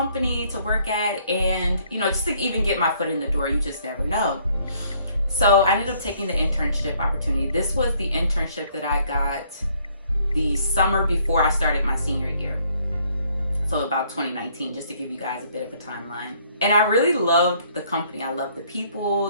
to work at, and just to even get my foot in the door, you just never know. So I ended up taking the internship opportunity. This was the internship that I got the summer before I started my senior year. So about 2019, just to give you guys a bit of a timeline. And I really loved the company. I loved the people.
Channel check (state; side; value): inverted; both; correlation -0.64